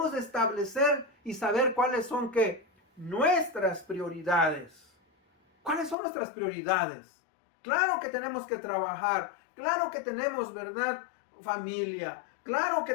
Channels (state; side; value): drops out; right; at 6.0 s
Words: de establecer y saber cuáles son nuestras prioridades. ¿Cuáles son nuestras prioridades? Claro que tenemos que trabajar, claro que tenemos, ¿verdad?, familia, claro que